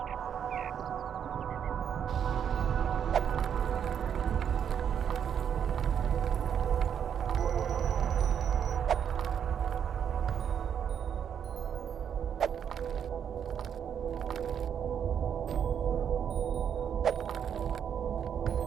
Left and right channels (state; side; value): quieter; left; 8.3 dB